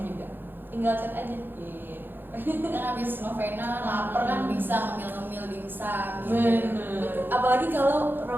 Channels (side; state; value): left; late; 0.097 ms